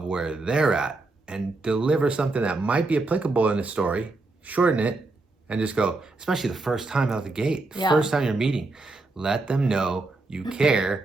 where they're at and deliver something that might be applicable in the story, shorten it, and just go, especially the first time out the gate, first time you're meeting, let them know you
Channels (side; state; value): left; quieter; 3.3 dB